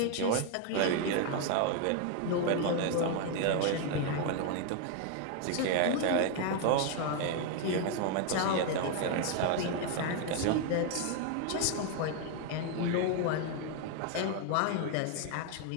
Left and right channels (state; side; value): different; both; correlation 0.01